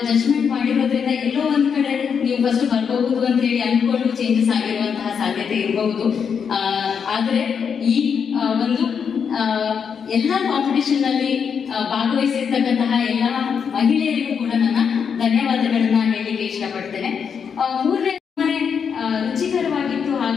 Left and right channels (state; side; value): quieter; right; 6.8 dB